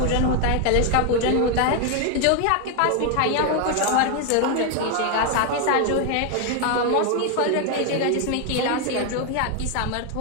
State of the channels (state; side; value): different; both; correlation 0.01